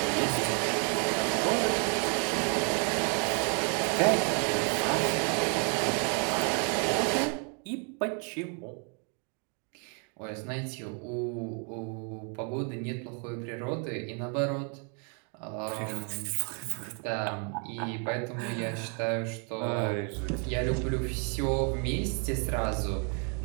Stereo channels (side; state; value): left; quieter; 39.1 dB